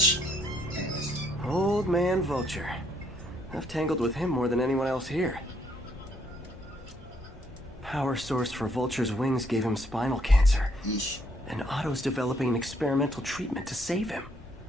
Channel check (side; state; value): both; normal; correlation 0.69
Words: Anyways. Old man Vulture. I've tangled with him more than anyone else here. Power source for Vulture's wings gave him spinal cancer. Yeesh. And Otto's developing an experimental treatment to save him.